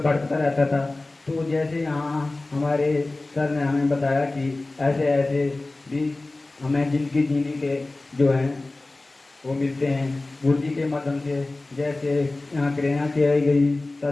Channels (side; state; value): right; quieter; 3.0 dB